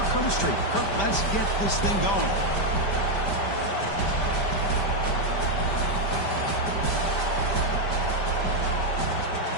Herbstreit. Kirk, let's get this thing going.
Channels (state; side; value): late; right; 5.1 ms